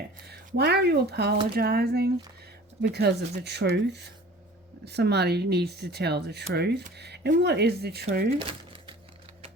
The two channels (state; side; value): normal; both; correlation 0.45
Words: Why are you apologizing? Because of the truth. Somebody needs to tell the truth. And what is the truth?